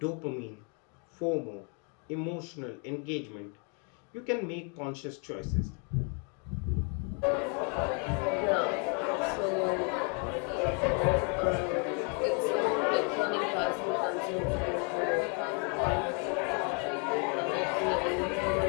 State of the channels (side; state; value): right; quieter; 37.7 dB